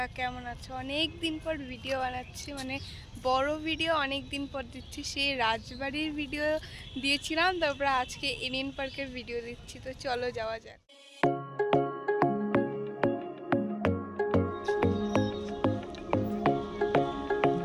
কেমন আছো? অনেক দিন পর ভিডিও বানাচ্ছি, মানে বড় ভিডিও অনেক দিন পর দিচ্ছি। সেই রাজবাড়ির ভিডিও দিয়েছিলাম, তারপর আজকে এনএন পার্কের ভিডিও দিচ্ছি। তো চলো যাওয়া যাক।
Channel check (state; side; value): identical; both; correlation 1.00